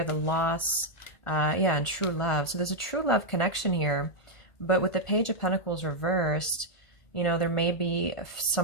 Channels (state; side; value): late; right; 1.5 ms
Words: the loss, yeah, and true love. So there's a true love connection here. But with the Page of Pentacles reversed, you know, there may be